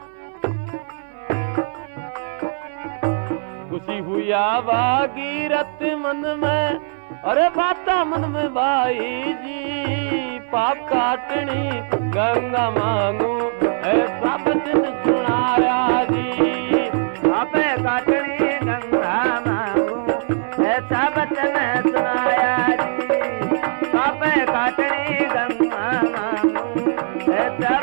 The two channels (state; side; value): silent; left; digital silence